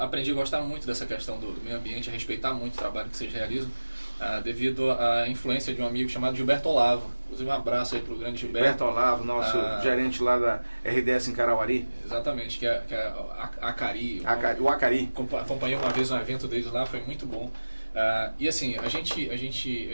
a gostar muito dessa questão do meio ambiente, a respeitar muito o trabalho que vocês realizam, devido à influência de um amigo chamado Gilberto Olavo. Inclusive, um abraço aí para o grande Gilberto. Gilberto Olavo, nosso gerente lá da RDS em Carauari. Exatamente, que é a Acari. O Acari. Acompanhei uma vez um evento deles lá, foi muito bom. E assim, a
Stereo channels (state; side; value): inverted; both; correlation -1.00